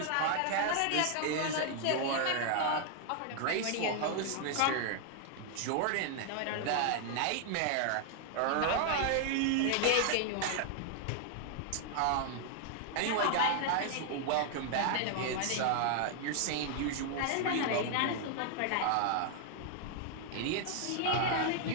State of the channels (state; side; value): different; both; correlation 0.00